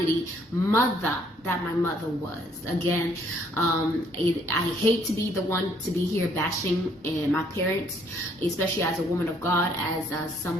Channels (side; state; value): both; normal; correlation 0.65